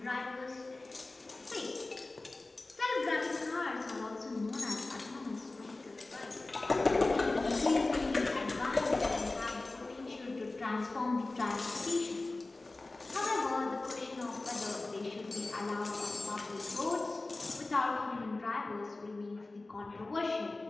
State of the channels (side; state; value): right; quieter; 3.1 dB